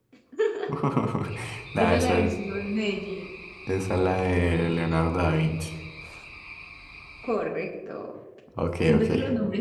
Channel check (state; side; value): identical; both; correlation 1.00